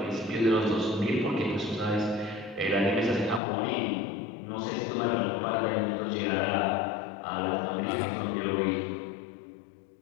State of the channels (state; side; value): drops out; right; at 3.4 s